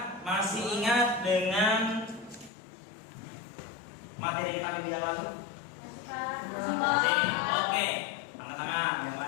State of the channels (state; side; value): drops out; right; at 2.5 s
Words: masih ingat dengan materi kita minggu yang lalu? Masih. Oke, angkat tangan yang